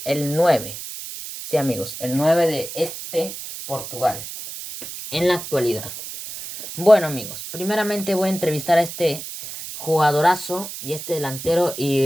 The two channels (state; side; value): noise; right; hiss, 10 dB below the sound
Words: el 9. Sí, amigos, el 9 de este Portugal en la actualidad. Bueno, amigos, primeramente voy a entrevistar a este jugadorazo y este delantero